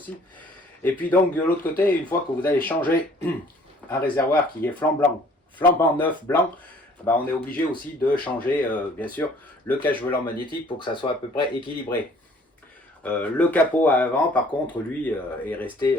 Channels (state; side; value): normal; both; correlation 0.56